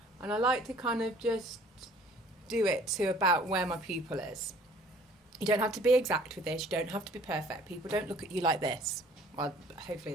And I like to kind of just do it to about where my pupil is. You don't have to be exact with this, you don't have to be perfect. People don't look at you like this. Well, hopefully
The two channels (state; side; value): normal; both; correlation 0.54